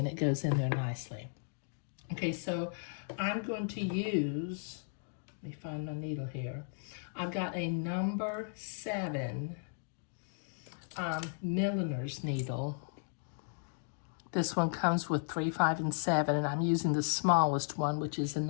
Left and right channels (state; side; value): silent; right; digital silence